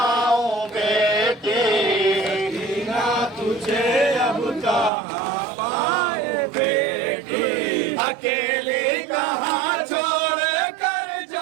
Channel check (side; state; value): left; drops out; at 4.9 s